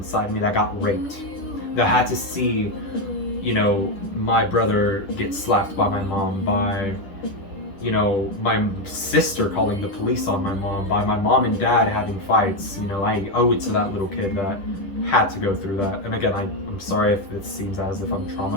me that got raped, that had to see, you know, my brother get slapped by my mom, by, you know, my sister calling the police on my mom, by my mom and dad having fights. You know, I owe it to that little kid that had to go through that. And again, I'm sorry if it seems as if I'm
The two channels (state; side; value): late; right; 10 ms